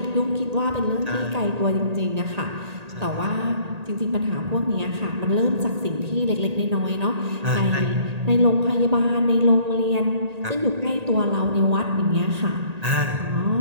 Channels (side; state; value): left; late; 1.8 ms